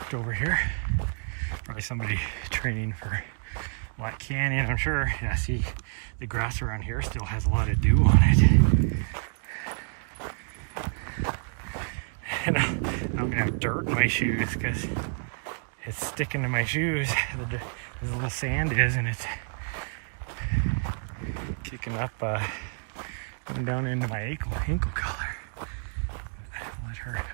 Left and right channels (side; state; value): left; silent; 59 dB below the other